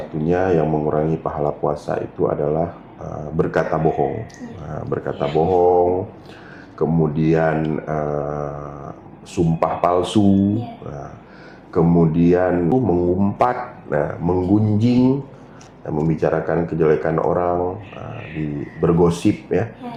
yang mengurangi pahala puasa itu adalah berkata bohong. Nah, berkata bohong, kemudian sumpah palsu, kemudian mengumpat, menggunjing, membicarakan kejelekan orang, bergosip ya.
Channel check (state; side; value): identical; both; correlation 1.00